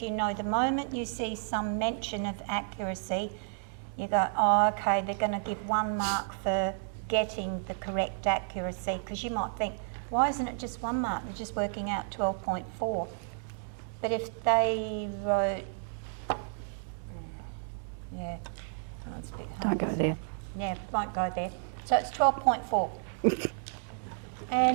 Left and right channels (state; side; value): silent; left; digital silence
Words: you know the moment you see some mention of accuracy, you go, oh, okay, they're going to give 1 mark for getting the correct accuracy, because you might think, why isn't it just 1 mark? They're just working out 12.4. But if they wrote, yeah, that one's a bit hard, isn't it? Yeah, we won't go there. So it's 12.4.